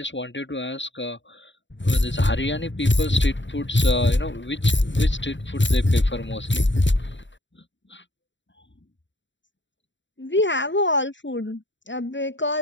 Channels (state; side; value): late; right; 0.54 ms